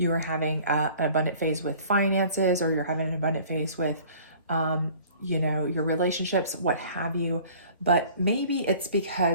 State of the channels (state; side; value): inverted; both; correlation -0.49